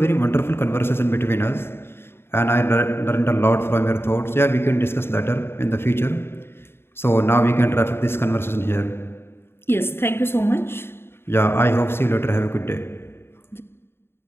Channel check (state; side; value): late; right; 0.11 ms